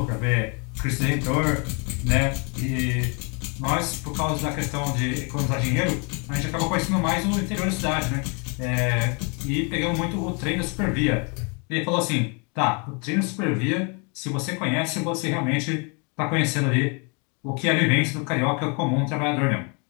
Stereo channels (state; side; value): quieter; right; 34.2 dB